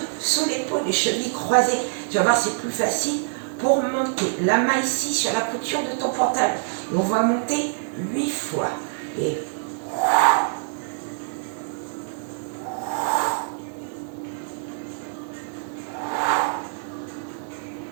sous l'épaule, les chevilles croisées. Tu vas voir, c'est plus facile pour monter. La main ici sur la couture de ton pantalon. Et on va monter 8 fois. Et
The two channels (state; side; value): silent; left; 61 dB below the other